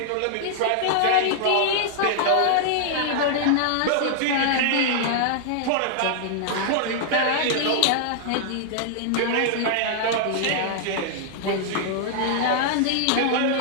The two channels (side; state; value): both; different; correlation -0.01